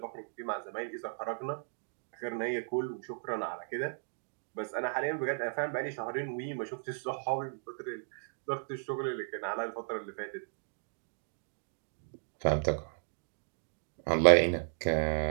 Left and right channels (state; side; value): silent; left; digital silence